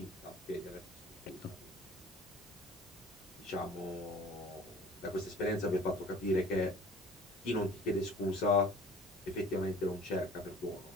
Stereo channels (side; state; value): both; normal; correlation 0.48